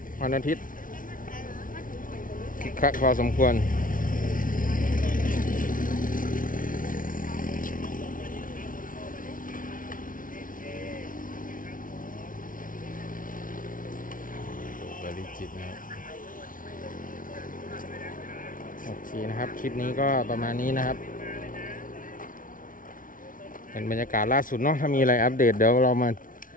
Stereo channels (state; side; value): late; right; 0.39 ms